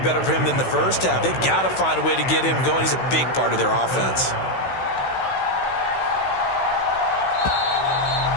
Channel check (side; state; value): right; late; 16 ms